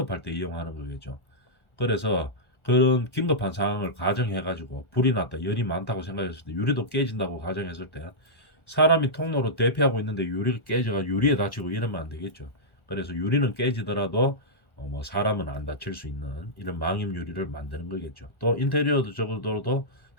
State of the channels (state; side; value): late; right; 1.4 ms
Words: 때 이용하는 거겠죠. 그래서 그런 긴급한 상황을 가정해 가지고 불이 났다 열이 많다고 생각했을 때 유리도 깨진다고 가정했을 때 사람이 통로로 대피하고 있는데 유리가 깨져가 유리에 다치고 이러면 안 되겠죠. 그래서 유리는 깨지더라도 뭐 사람은 안 다칠 수 있는 이런 망임 유리를 만드는 거겠죠. 또 인테리어도 적어도